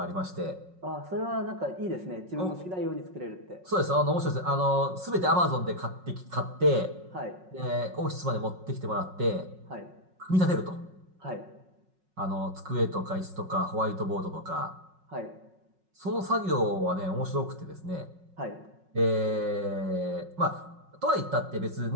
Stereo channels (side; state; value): left; late; 5.4 ms